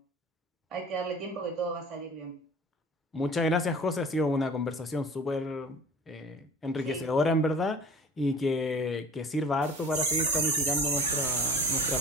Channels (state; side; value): normal; both; correlation 0.43